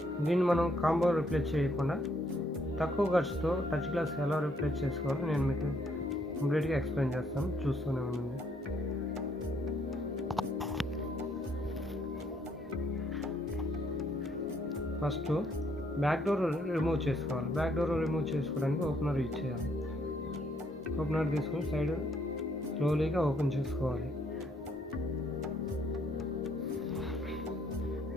దీన్ని మనం కాంబో రిప్లేస్ చేయకుండా తక్కువ ఖర్చుతో టచ్ గ్లాస్ ఎలా రిప్లేస్ చేసుకోవాలో నేను మీకు కంప్లీట్గా ఎక్స్ప్లెయిన్ చేస్తాను. చూస్తూనే ఉండండి. ఫస్ట్ బ్యాక్ డోర్ రిమూవ్ చేసుకోవాలి. బ్యాక్ డోర్ రిమూవ్ చేసుకోవడానికి ఓపెనర్ యూజ్ చేయాలి. ఓపెనర్ తీసుకొని సైడ్ స్లోలీగా ఓపెన్ చేసుకోవాలి.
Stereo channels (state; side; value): normal; both; correlation 0.69